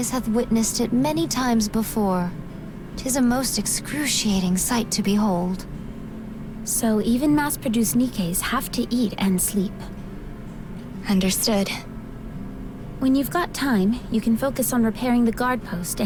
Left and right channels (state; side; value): identical; both; correlation 1.00